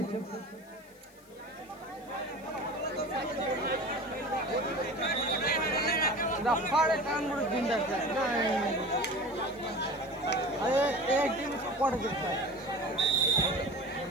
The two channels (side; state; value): left; noise; hiss, 26 dB below the sound